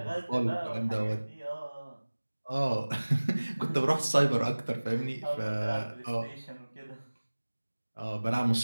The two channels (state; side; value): inverted; both; correlation -1.00